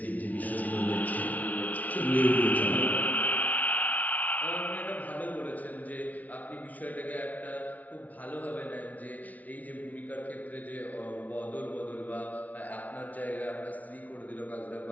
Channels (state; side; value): late; right; 0.074 ms